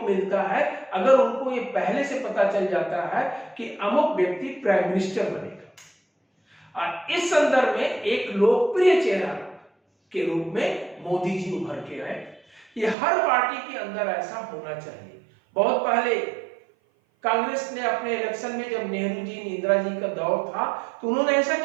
मिलता है अगर उनको ये पहले से पता चल जाता है कि अमुक व्यक्ति प्राइम मिनिस्टर बनेगा। और इस संदर्भ में एक लोकप्रिय चेहरा के रूप में मोदी जी उभर के आए। ये हर पार्टी के अंदर ऐसा होना चाहिए। बहुत पहले कांग्रेस ने अपने इलेक्शन में, जब नेहरू जी, इंदिरा जी का दौर था, तो उन्होंने ऐसा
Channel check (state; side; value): drops out; left; at 13.0 s